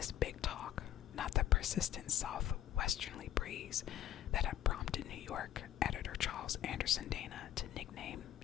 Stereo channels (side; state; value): right; quieter; 11.8 dB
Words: big talk, not the persistent southwesterly breeze, that had prompted New York editor Charles Anderson Dana to nickname